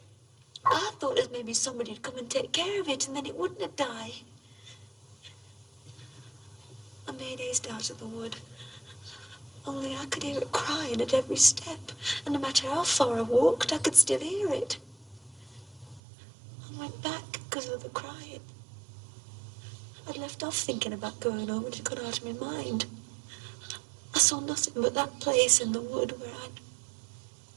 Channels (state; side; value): drops out; left; at 16.0 s